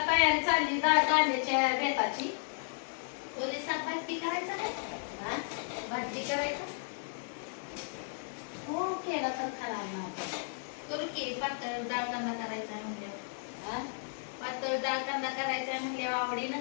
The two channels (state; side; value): silent; right; 55 dB below the other